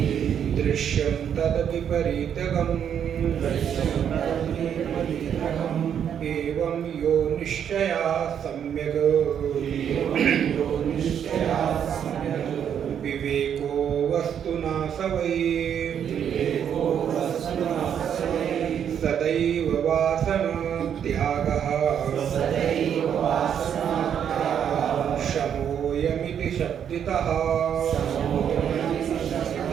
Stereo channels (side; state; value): left; quieter; 8.6 dB